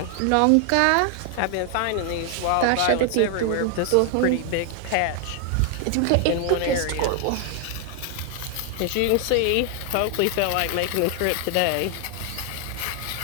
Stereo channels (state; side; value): different; both; correlation 0.00